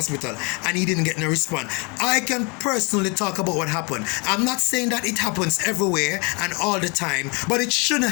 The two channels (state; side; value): quieter; right; 30.8 dB